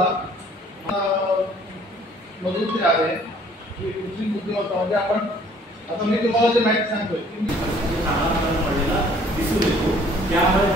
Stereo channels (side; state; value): both; normal; correlation 0.57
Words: मधून ते आहे की कृत्रिम बुद्धिमत्ता म्हणजे आपण आता मी तुम्हाला जे माहिती सांगतोय की दिसून येतो. त्यामुळे